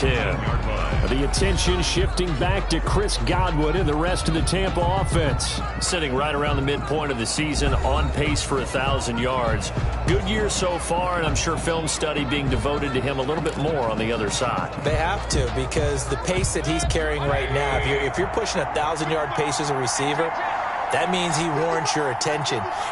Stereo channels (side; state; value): both; identical; correlation 1.00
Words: The attention shifting back to Chris Godwin and the rest of the Tampa offense. Sitting right around the midpoint of the season, on pace for 1,000 yards. Good year so far, and I'm sure film study being devoted to him a little bit more on the other side. They have to, because the pace that he's carrying right now, if you're pushing 1,000-yard pace as a receiver, that means he warrants your attention.